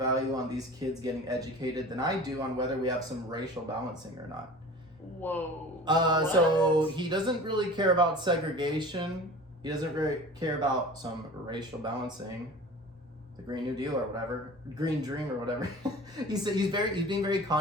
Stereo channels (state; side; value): normal; both; correlation 0.39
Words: on these kids getting educated than I do on whether we have some racial balancing or not." Whoa. So he doesn't really care about segregation. He doesn't really care about some racial balancing, the Green New Deal or whatever, Green Dream or whatever. He's being very